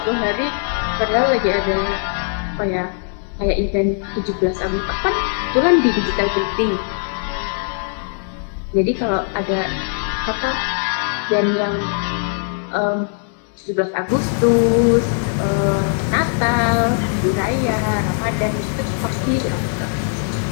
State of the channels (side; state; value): right; silent; 65 dB below the other